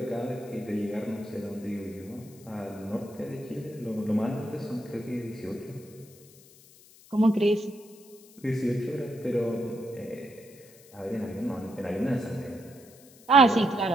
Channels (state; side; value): noise; left; hiss, 23 dB below the sound